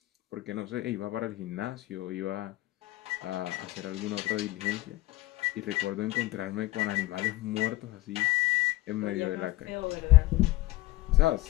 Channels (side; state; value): right; quieter; 18.4 dB